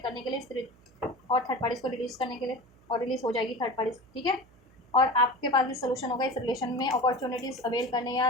करने के लिए, और थर्ड पार्टीज़ को रिलीज़ करने के लिए, और रिलीज़ हो जाएगी थर्ड पार्टीज़। ठीक है, और आपके पास भी सोल्यूशन होगा इस रिलेशन में अपॉर्चुनिटीज़ अवेल करने या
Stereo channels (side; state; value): right; noise; hum, 28 dB below the sound